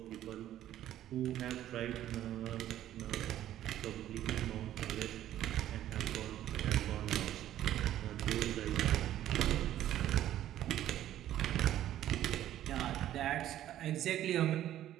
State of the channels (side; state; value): left; quieter; 12.4 dB